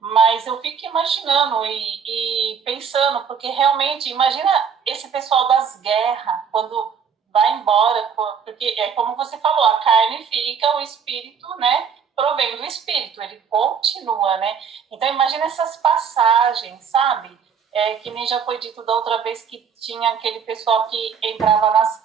Mas eu fico imaginando e pensando, porque realmente, imagina esse pessoal das guerras, quando vai embora, porque é como você falou, a carne fica, o espírito, né, provém do espírito, ele continua, né? Então imagina essas passagens, sabe? Que nem já foi dito da outra vez que tinha aquele pessoal que entrava nas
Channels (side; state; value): left; quieter; 6.8 dB